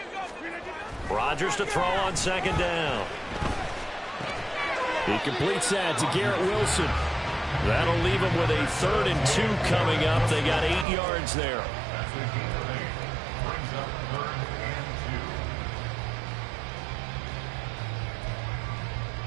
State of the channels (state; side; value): drops out; left; at 10.9 s